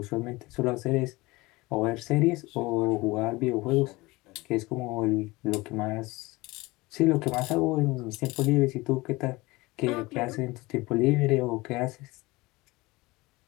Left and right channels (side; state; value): right; quieter; 21.7 dB